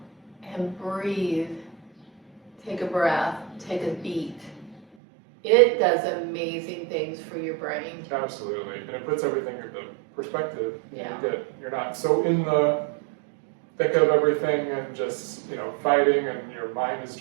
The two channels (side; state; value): left; drops out; at 4.8 s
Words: and breathe. Take a breath, take a beat. It does amazing things for your brain. Absolutely, and it puts everything into perspective. Yeah. You're not so in the thick of everything and just fighting, and your mind is